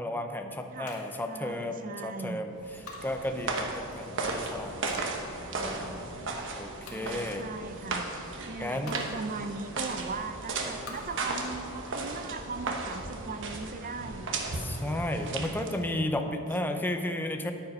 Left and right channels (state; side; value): normal; both; correlation 0.35